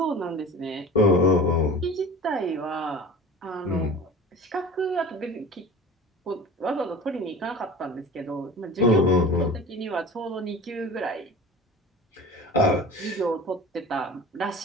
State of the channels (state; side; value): normal; both; correlation 0.38